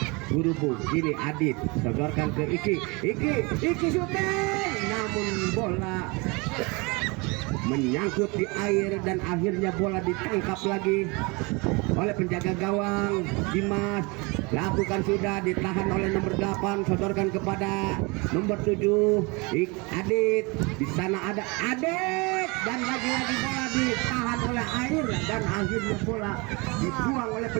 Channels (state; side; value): quieter; left; 27.7 dB